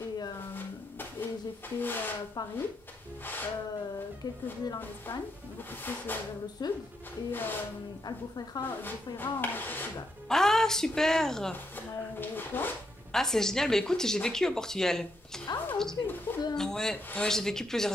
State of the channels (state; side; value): normal; both; correlation 0.79